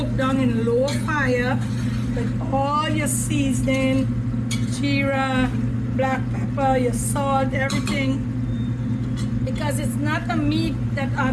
down in low fire with all your seasoning, jeera, black pepper, your salt, everything. Because it's not a meat that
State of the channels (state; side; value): identical; both; correlation 1.00